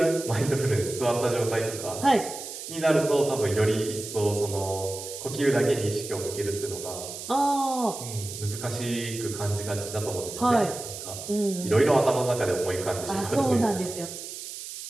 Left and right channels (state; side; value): noise; right; hiss, 10 dB below the sound